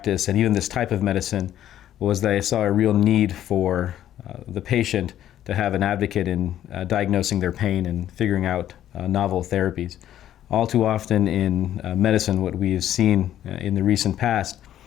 and even this type of medicine was that I saw a real need for the patient to have an advocate in diagnosing their pain and figuring out novel therapies. All too often in medicine, what we have seen in the recent past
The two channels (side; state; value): right; quieter; 11.7 dB